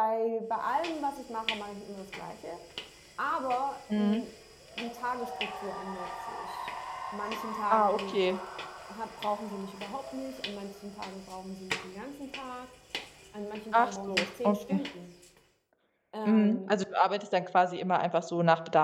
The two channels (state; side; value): identical; both; correlation 1.00